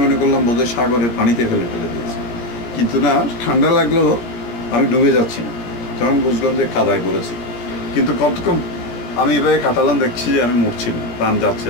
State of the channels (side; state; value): right; late; 17 ms